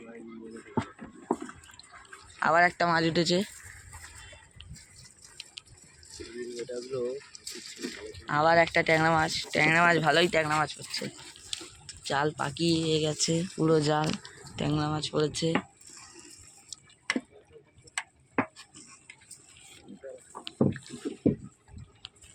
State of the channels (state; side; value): identical; both; correlation 1.00